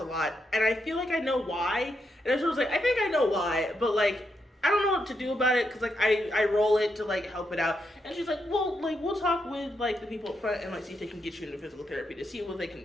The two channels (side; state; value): both; normal; correlation 0.82